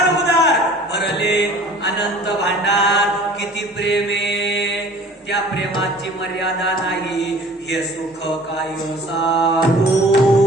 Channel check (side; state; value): both; normal; correlation 0.48